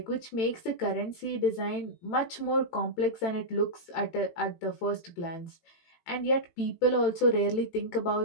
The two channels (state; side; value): late; right; 18 ms